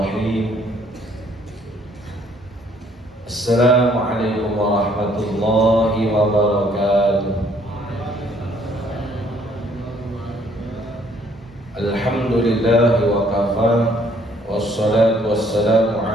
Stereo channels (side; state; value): both; normal; correlation 0.63